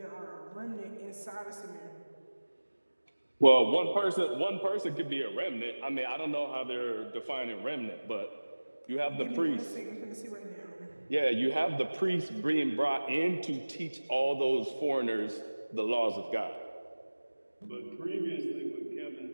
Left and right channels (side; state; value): both; inverted; correlation -1.00